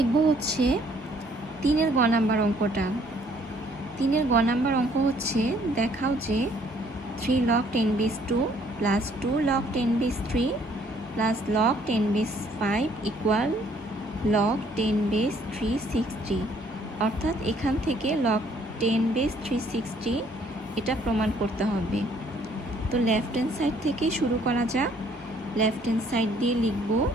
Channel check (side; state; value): both; normal; correlation 0.63